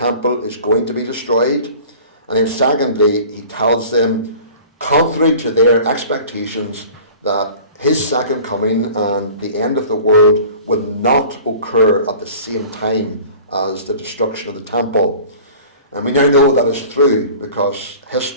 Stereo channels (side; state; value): both; inverted; correlation -0.44